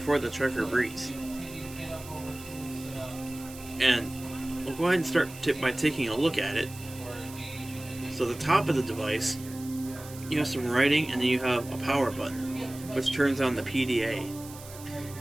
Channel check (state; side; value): noise; right; hiss, 16 dB below the sound